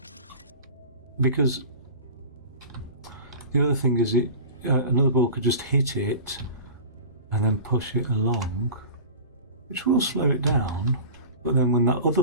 because the other thing is another ball could just hit it and then push it along, which will slow it down, but then when that other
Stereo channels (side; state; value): both; inverted; correlation -0.37